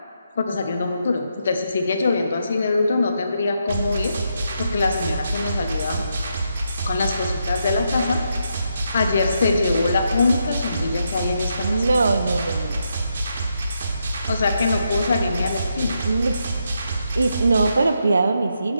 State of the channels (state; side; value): inverted; both; correlation -0.81